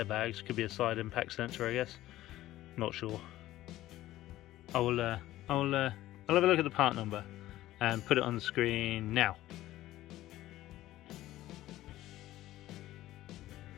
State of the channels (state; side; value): quieter; right; 15.1 dB